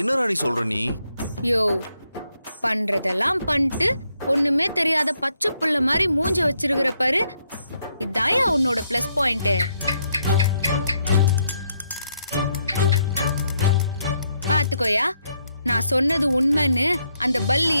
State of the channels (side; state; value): both; inverted; correlation -0.76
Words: என்ன ராணி சொல்ற நீ? யோ, பண்றதெல்லாம் பண்ணிட்டு ஒண்ணுமே தெரியாத பச்சை புள்ள மாதிரி மூஞ்ச வச்சிருக்கிற பாரு, இதாயா உன்னோட பிளஸ் பாயிண்ட். பாத்துக்கோயா, நான் சொன்னது உண்மைன்னு அந்த